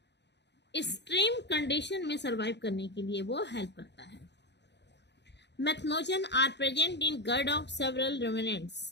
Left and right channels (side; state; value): right; late; 0.50 ms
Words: एक्सट्रीम कंडीशन में सरवाइव करने के लिए वो हेल्प करता है। Methanogen are present in gut of several